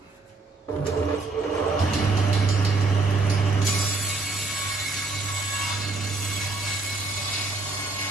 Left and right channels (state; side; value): quieter; left; 3.5 dB